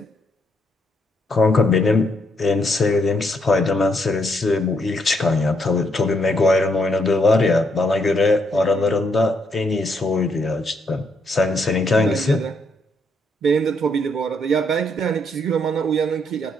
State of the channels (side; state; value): both; normal; correlation 0.75